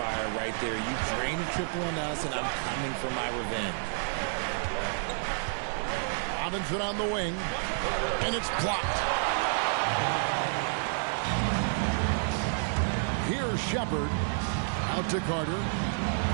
right there. You drain a triple on us, and I'm coming for my revenge. Robinson on the wing, and it's blocked. Here's Shepard. Out to Carter.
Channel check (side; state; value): left; silent; 58 dB below the other